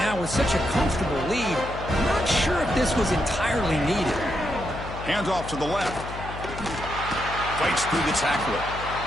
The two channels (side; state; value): left; noise; hum, 10 dB below the sound